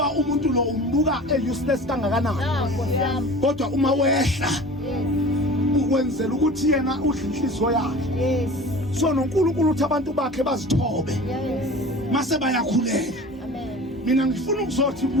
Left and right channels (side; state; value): both; normal; correlation 0.40